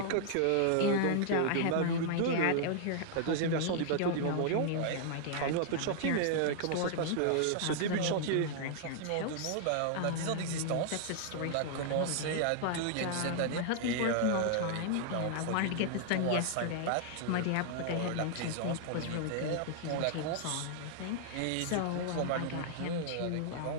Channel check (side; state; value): both; different; correlation -0.01